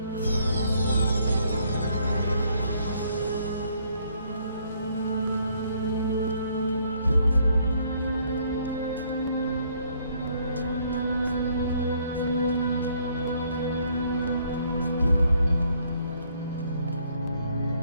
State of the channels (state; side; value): inverted; both; correlation -0.67